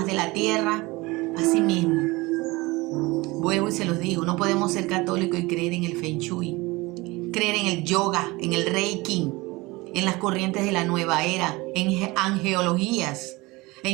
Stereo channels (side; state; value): left; quieter; 22.5 dB